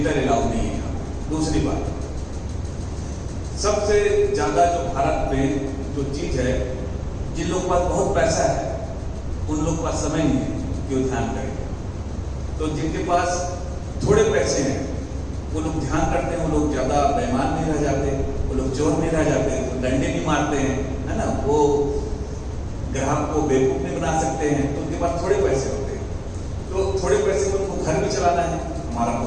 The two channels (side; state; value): both; identical; correlation 1.00